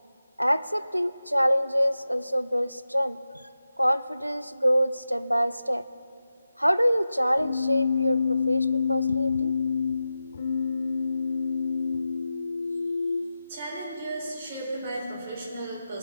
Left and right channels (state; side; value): inverted; both; correlation -0.93